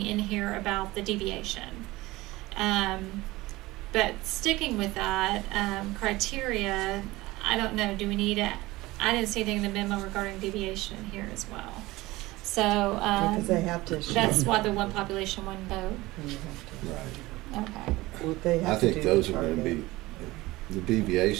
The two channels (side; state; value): left; quieter; 19.6 dB